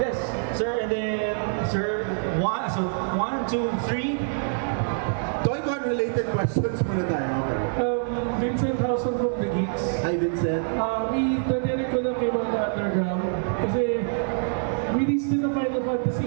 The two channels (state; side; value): silent; left; 61 dB below the other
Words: Yes, sir, and then, sir, 1, 2, 3. Toycon-related questions muna tayo. Okay. Vincent Housen from The Geeks. Hi, Vincent. Idadirik ko lang kayo mga underground kasi release din na Final Fantasy